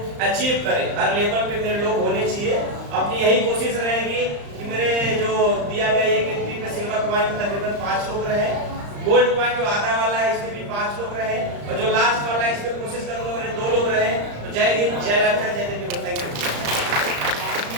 अचीव करें, हर लेवल पे मेरे लोग होने चाहिए। अपनी यही कोशिश रहेगी कि मेरे जो दिया गया एक एंट्री पे सिल्वर पॉइंट में तकरीबन 5 लोग रहे, गोल्ड पॉइंट जो आधा वाला है इसमें भी 5 लोग रहे, और जो लास्ट वाला है इसमें कोशिश करूंगा मेरे 2 लोग रहे। तो जय हिंद, जय लाल, जय देवी। Thank you.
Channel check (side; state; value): left; late; 35 ms